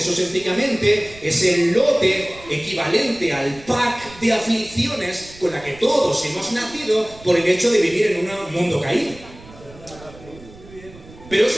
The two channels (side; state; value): right; noise; rumble, 20 dB below the sound